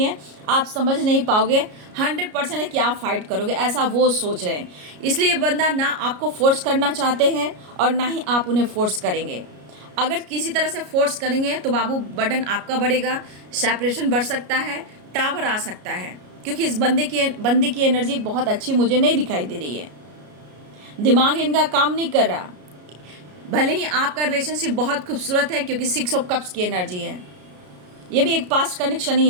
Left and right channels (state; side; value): late; left; 33 ms